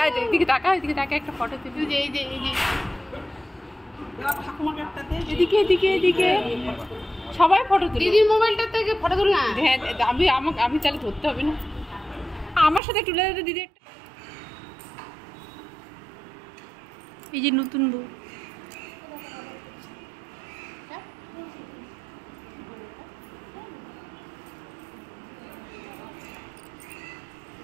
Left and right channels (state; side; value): drops out; left; at 12.8 s